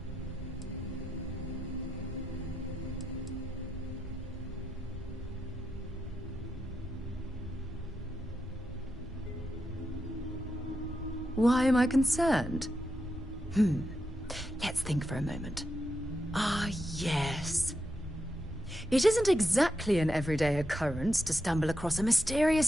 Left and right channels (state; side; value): normal; both; correlation 0.85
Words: Why am I concerned? Let's think for a moment. Ah, yes. It isn't exactly an everyday occurrence to stumble across a